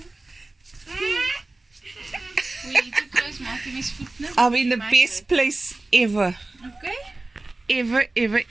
I'm in the best place ever. Okay.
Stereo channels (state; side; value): quieter; left; 3.0 dB